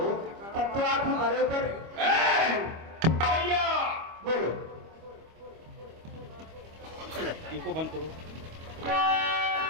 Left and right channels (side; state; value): left; late; 25 ms